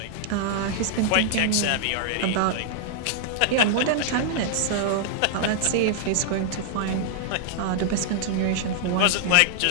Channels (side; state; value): both; different; correlation -0.01